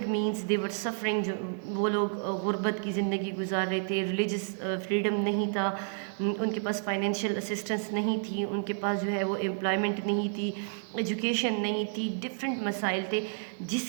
means, they were suffering, جو وہ لوگ غربت کی زندگی گزار رہے تھے، ریلیجس فریڈم نہیں تھا، ان کے پاس فائنینشیل اسسٹنس نہیں تھی، ان کے پاس جو ہے وہ امپلائمنٹ نہیں تھی، ایجوکیشن نہیں تھی، ڈفرینٹ مسائل تھے، جس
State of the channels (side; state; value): left; silent; digital silence